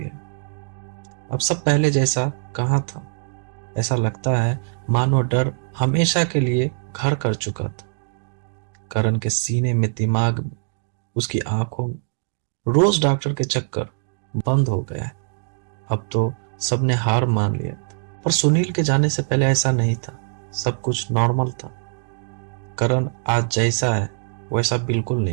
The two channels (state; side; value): silent; left; digital silence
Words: अब सब पहले जैसा कहाँ था। ऐसा लगता है मानो डर हमेशा के लिए घर कर चुका था। करण के सीने में, दिमाग में, उसकी आंखों में रोज डॉक्टर के चक्कर बंद हो गया है। अब तो सबने हार मान लिया था। पर सुनील के जाने से पहले ऐसा नहीं था, सब कुछ नॉर्मल था। करण आज जैसा है वैसा बिल्कुल